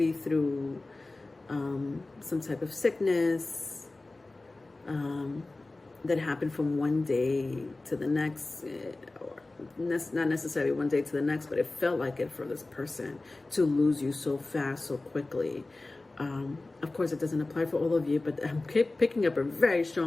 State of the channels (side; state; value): right; quieter; 3.1 dB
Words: through some type of sickness that happened from one day to the next, or not necessarily one day to the next, but it felt like it for this person to lose you so fast, so quickly. Of course, it doesn't apply for all of you, but I'm picking up a very